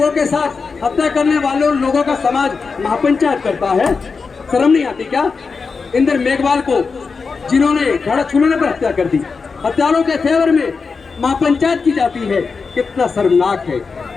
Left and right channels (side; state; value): right; quieter; 4.9 dB